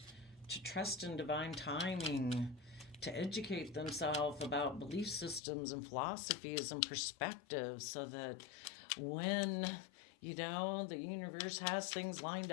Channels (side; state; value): right; drops out; at 5.4 s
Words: to trust in divine timing, to educate themselves about belief systems and philosophies and perspectives so that when the universe has things lined